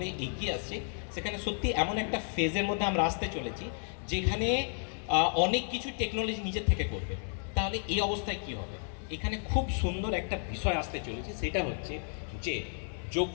এগিয়ে আসছে সেখানে সত্যি এমন একটা ফেজের মধ্যে আমরা আসতে চলেছি যেখানে অনেক কিছু টেকনোলজি নিজের থেকে করবে। তাহলে এই অবস্থায় কি হবে? এখানে খুব সুন্দর একটা বিষয় আসতে চলেছে, সেটা হচ্ছে যে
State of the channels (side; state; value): right; silent; 55 dB below the other